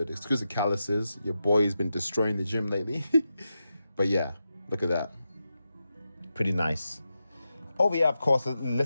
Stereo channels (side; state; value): both; inverted; correlation -0.89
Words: Excuse the calluses. Your boy's been destroying the gym lately. But yeah, look at that. Pretty nice. Over here, of course,